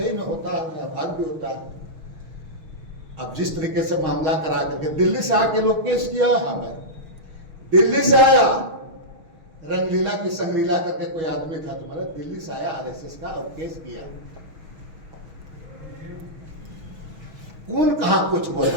में होता है, भाग भी होता है। अब जिस तरीके से मामला करा करके दिल्ली से आके लोग केस किया, हमें दिल्ली से आया रंगलीला की संगलीला करके कोई आदमी था तुम्हारा, दिल्ली से आया आरएसएस का और केस किया। कौन कहां कुछ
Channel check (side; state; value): left; late; 6.3 ms